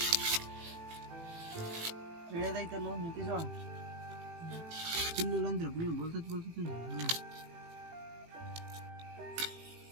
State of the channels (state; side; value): late; left; 18 ms